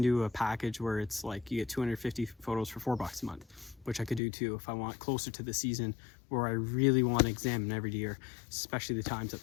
do a package where it's like you get 250 photos for $4 a month, which I could do too if I want closer to the season where I really want to examine every deer, especially the times that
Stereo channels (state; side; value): drops out; right; at 4.2 s